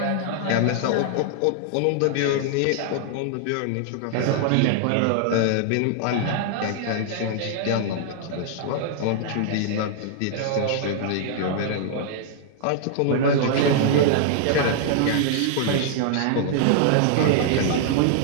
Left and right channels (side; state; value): both; different; correlation -0.01